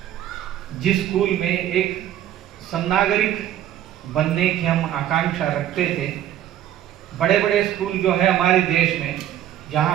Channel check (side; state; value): left; quieter; 11.7 dB